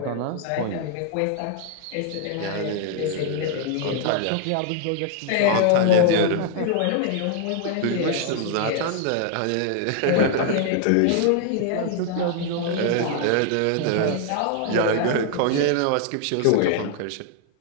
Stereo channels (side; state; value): both; different; correlation 0.00